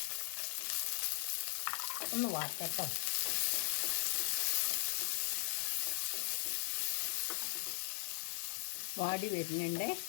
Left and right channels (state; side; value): silent; right; digital silence